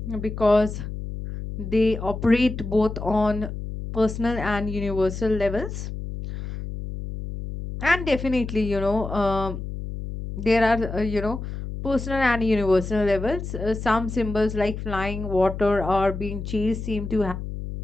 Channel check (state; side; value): noise; left; hum, 7 dB below the sound